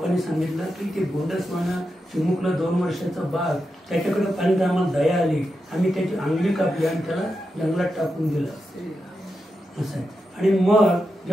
सांगितलं की ते गोंडसवानं चिमुकलं 2 वर्षाचं बाळ, त्याच्याकडे पाहिजे आम्हाला दया आली, आम्ही त्याची अंगली कापली आणि त्याला जंगलात टाकून दिलं असं आहे. आणि मग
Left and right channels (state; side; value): normal; both; correlation 0.88